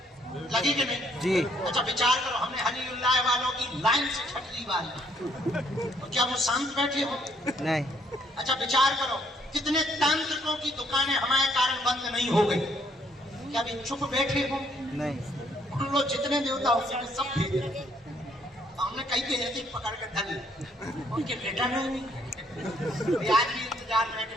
कि नहीं जी? अच्छा विचार करो, हमने हलीउल्लाह वालों की लाइन से छटली वाली, तो क्या वो शांत बैठे हो? नहीं। अच्छा विचार करो, कितने तांत्रिकों की दुकानें हमारे कारण बंद नहीं हो गई, क्या भी चुप बैठे हो? नहीं। उन लोग जितने देवता होंगे सब भेज रहे, हमने कई के ऐसे पकड़ के धल, उनके बेटा नहीं आज भी 4 मिनट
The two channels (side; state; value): both; normal; correlation 0.67